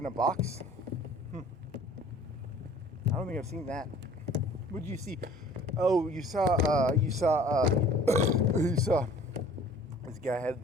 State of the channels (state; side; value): normal; both; correlation 0.50